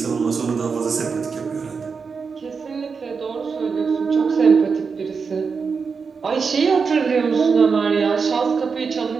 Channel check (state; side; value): quieter; left; 5.3 dB